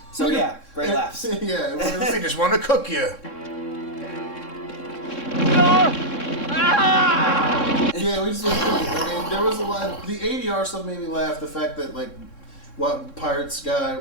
So yeah, great laughs. Yeah. They just want to cook you. Yeah, we just looked at it. I mean, there was a lot. The ADR stuff made me laugh. The fact that what pirate guy,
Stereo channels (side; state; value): right; late; 3.6 ms